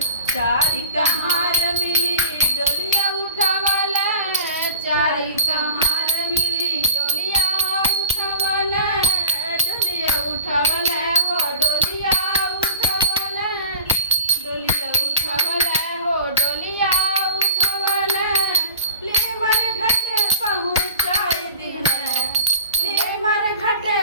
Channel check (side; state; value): both; inverted; correlation -0.42